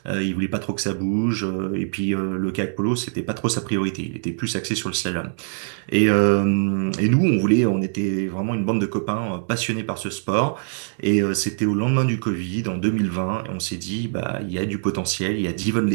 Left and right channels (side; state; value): left; silent; digital silence